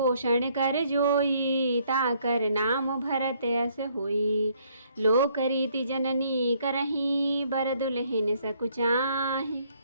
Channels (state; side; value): inverted; both; correlation -0.67